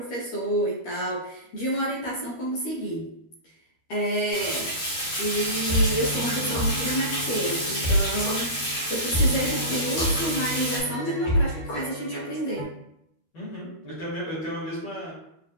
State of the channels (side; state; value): right; late; 13 ms